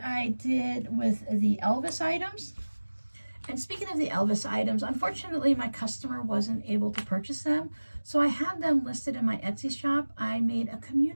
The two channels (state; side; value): inverted; both; correlation -1.00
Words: did with the Elvis items. And speaking of the Elvis items, unfortunately my customer wasn't able to purchase them, so I have them listed in my Etsy shop. I made a